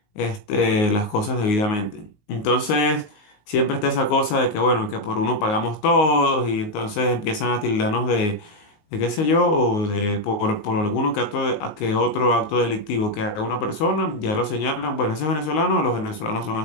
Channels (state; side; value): late; right; 19 ms